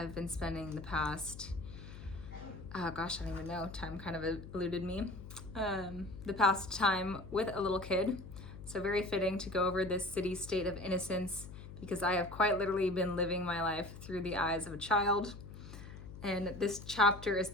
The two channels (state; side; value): noise; left; hum, 13 dB below the sound